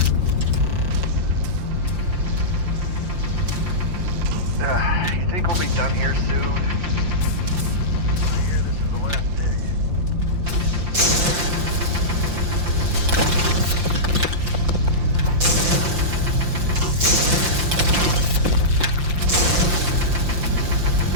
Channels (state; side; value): late; left; 5.7 ms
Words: You think we'll be done here soon? I hear this is the last dig.